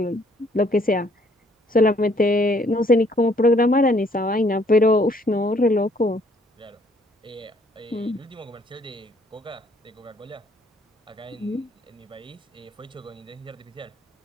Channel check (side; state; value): both; normal; correlation 0.64